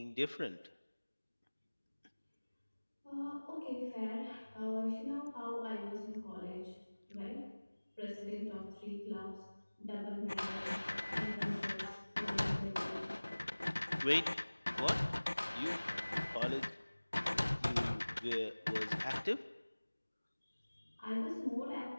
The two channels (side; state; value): both; inverted; correlation -1.00